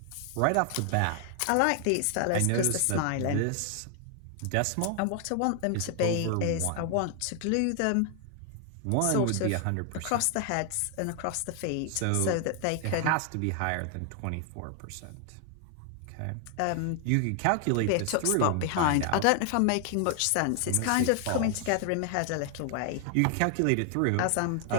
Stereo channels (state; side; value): different; both; correlation 0.00